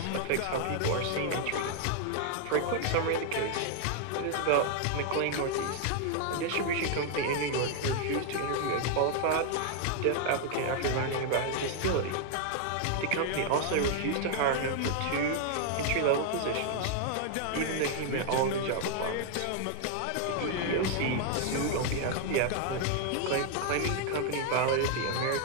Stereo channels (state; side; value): different; both; correlation 0.00